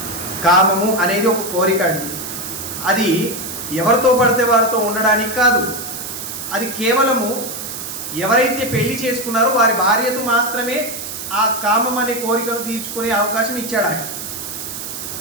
కామము అనేది ఒక కోరిక అండి. అది ఎవరితో పడితే వారితో ఉండడానికి కాదు. అది కేవలము ఎవరైతే పెళ్లి చేసుకున్నారో వారి భార్యతో మాత్రమే ఆ కామం అనే కోరికను తీర్చుకునే అవకాశం ఇచ్చాడు ఆయన.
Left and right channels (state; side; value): noise; right; hiss, 7 dB below the sound